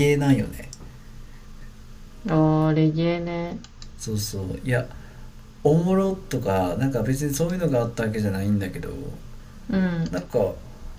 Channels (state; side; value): identical; both; correlation 1.00